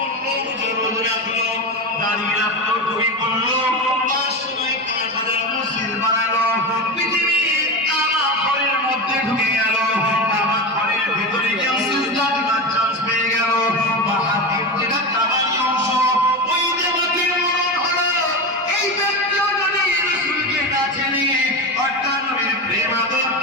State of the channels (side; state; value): both; normal; correlation 0.20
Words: রোজ রাখলো, দাঁড়িয়ে রাখলো, টুপি পড়লো, 500 মসজিদ বানালো, পৃথিবীর কাবা ঘরের মধ্যে ঢুকে গেল, কাবা ঘরের ভিতরে কেউ সিজদা দিবার চান্স পেয়ে গেল, বাহাতির যেটা কাবারই অংশ ওই দেবতার মরণ হলো। এই ব্যক্তিও যদি রাসূলকে না চেনে, অর্থাৎ নবীর প্রেম আদর